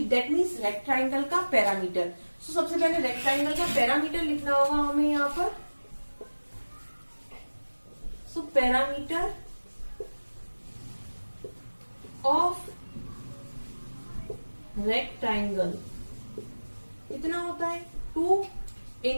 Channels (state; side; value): inverted; both; correlation -1.00